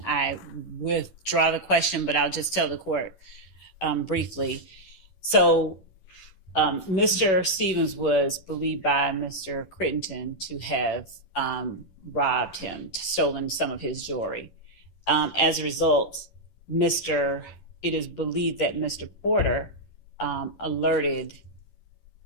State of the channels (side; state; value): right; late; 10 ms